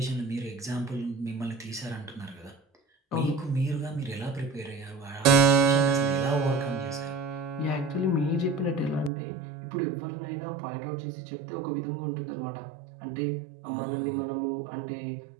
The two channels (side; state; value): left; drops out; at 9.1 s